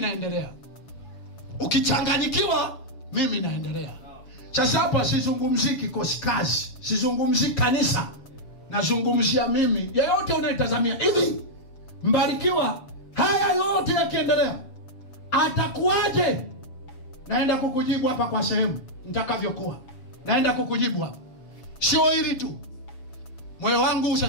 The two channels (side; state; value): right; late; 7.1 ms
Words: Ukichanganyikiwa mimi naendelea. Sasa hapa sizungumzii kikosi kazi, sizungumzii kanisa. Nazungumzia mimi. Yeyote unayetazamia hivi, mbarikiwa haya yote yakiendelea atakuwaje? Naenda kukujibu hapa kwa sehemu nitakavyokuwa. Naenda kukujibu hapa. Sio hili tu. Moyo wangu